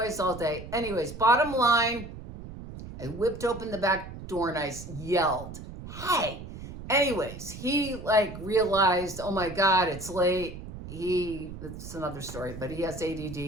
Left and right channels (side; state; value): right; noise; rumble, 12 dB below the sound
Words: all day. Anyways, bottom line, I whipped open the back door and I yelled, hey. Anyways, he realized, oh my God, it's late. It's another story, but he has